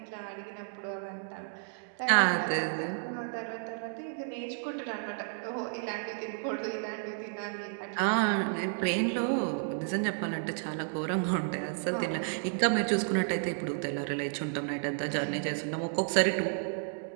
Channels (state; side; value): silent; left; digital silence